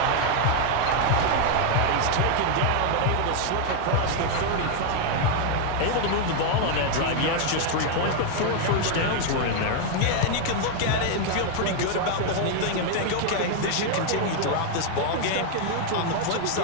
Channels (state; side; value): different; both; correlation 0.00